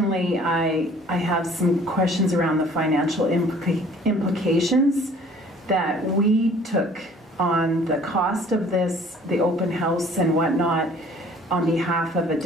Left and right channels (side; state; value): both; normal; correlation 0.53